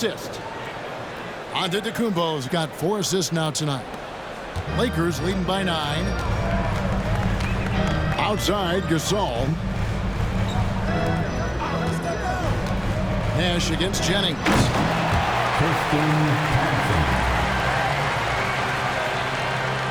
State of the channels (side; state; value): both; identical; correlation 1.00